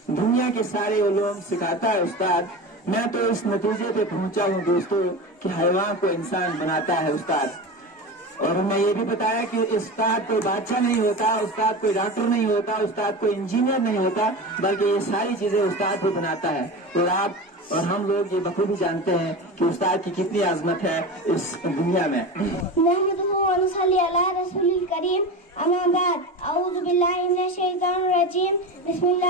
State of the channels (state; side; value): normal; both; correlation 0.27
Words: दुनिया के सारे उलूम सिखाता है उस्ताद। मैं तो इस नतीजे पे पहुंचा हूँ दोस्तों कि हैवान को इंसान बनाता है उस्ताद। और हमें ये भी बताया कि उस्ताद कोई बादशाह नहीं होता, उस्ताद कोई डॉक्टर नहीं होता, उस्ताद कोई इंजीनियर नहीं होता, बल्कि ये सारी चीजें उस्ताद को बनाता है। और आप और हम लोग ये बखूबी जानते हैं कि उस्ताद की कितनी आज़मत है इस दुनिया में। अम्मा बाद औज़ु बिल्लाहि मिनश शैतानिर रजीम